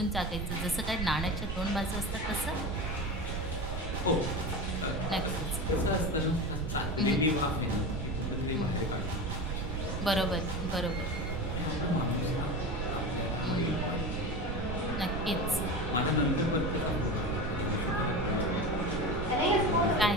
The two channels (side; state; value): right; noise; rumble, 4 dB below the sound